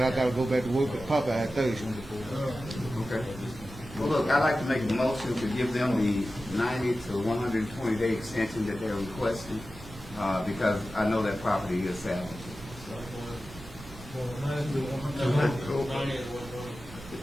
I gotta go back to work at Popeye Thursday. Okay. Well, look, I'd like to make a motion to give them the 90 to 120 day extension that they're requesting, because I know that property is salvageable. Well,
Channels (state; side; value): noise; right; rumble, 17 dB below the sound